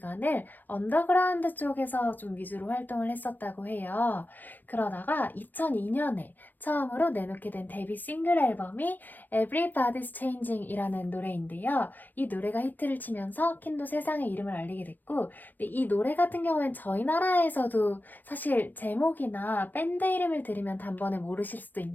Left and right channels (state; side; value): late; right; 0.086 ms